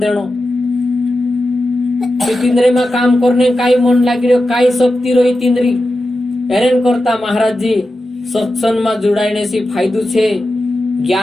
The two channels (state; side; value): normal; both; correlation 0.91